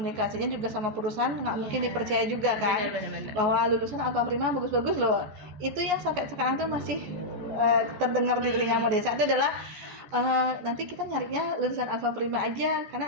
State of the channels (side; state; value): left; late; 14 ms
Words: juga sama perusahaan, nggak mungkin dipercaya juga kan. Benar. Bahwa lulusan Alfa Prima bagus-bagus loh. Itu yang sampai sekarang tuh masih terdengar di telinga Modesa itu adalah nanti kita nyarinya lulusan Alfa Prima aja